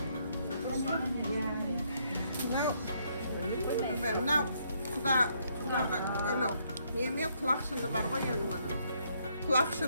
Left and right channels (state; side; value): inverted; both; correlation -0.72